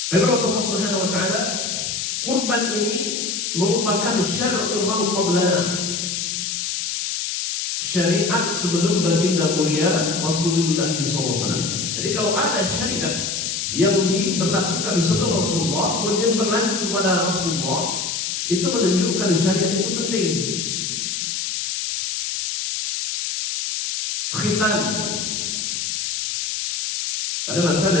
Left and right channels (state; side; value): noise; left; hiss, 2 dB below the sound